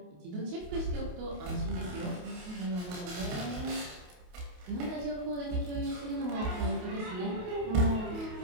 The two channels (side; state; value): left; late; 28 ms